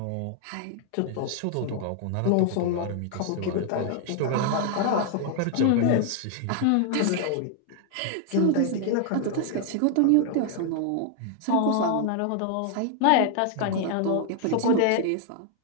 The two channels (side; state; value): both; different; correlation 0.00